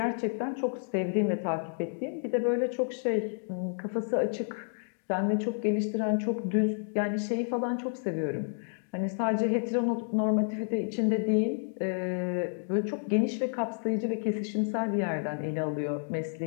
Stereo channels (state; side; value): silent; right; digital silence